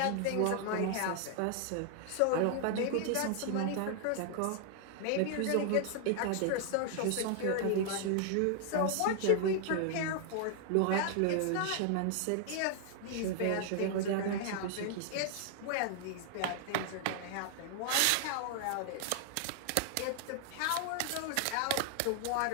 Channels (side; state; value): both; different; correlation 0.00